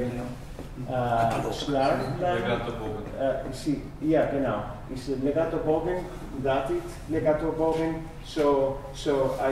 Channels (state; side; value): identical; both; correlation 1.00